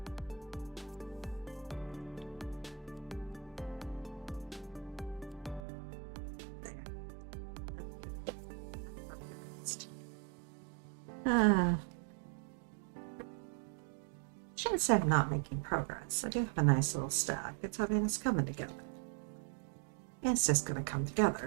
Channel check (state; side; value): drops out; left; at 5.6 s